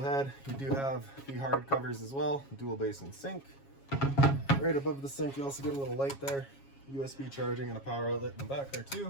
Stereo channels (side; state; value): right; late; 7.3 ms